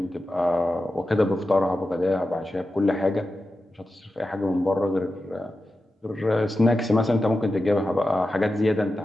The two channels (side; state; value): both; normal; correlation 0.92